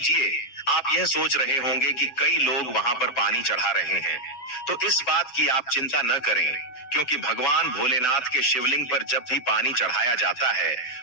आप यह सोच रहे होंगे कि कई लोग वहां पर पानी चढ़ा रहे हैं, तो इस बात की आप चिंता न करें, क्योंकि भगवान भोलेनाथ के शिवलिंग पर जब भी पानी चढ़ाया जाता है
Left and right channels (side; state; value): right; late; 7.9 ms